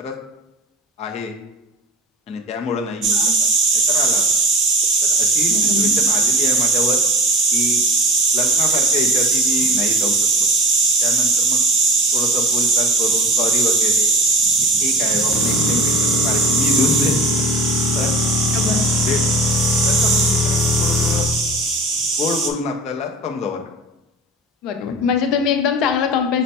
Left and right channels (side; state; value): both; normal; correlation 0.34